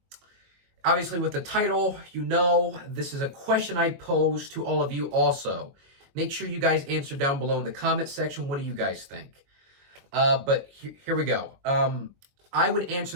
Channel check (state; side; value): late; left; 22 ms